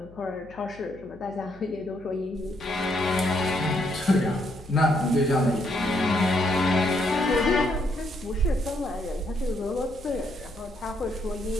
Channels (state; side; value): noise; left; hum, 22 dB below the sound